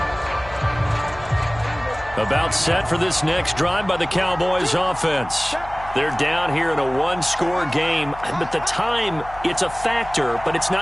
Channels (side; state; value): left; noise; hum, 16 dB below the sound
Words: About set for this next drive by the Cowboys offense. They're down here in a one-score game, but the time, it's a factor, but it's